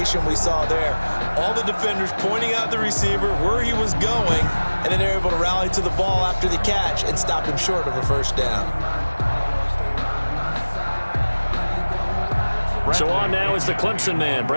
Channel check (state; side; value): inverted; both; correlation -1.00